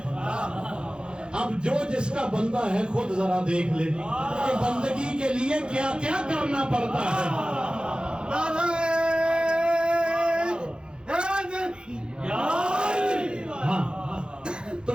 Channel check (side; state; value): left; late; 0.050 ms